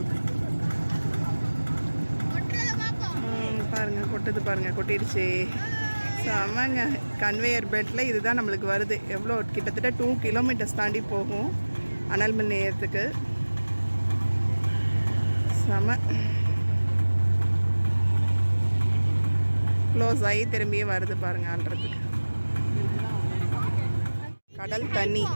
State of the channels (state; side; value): inverted; both; correlation -1.00